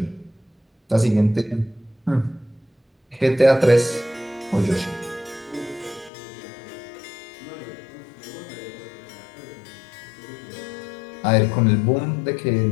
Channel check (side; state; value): right; drops out; at 6.1 s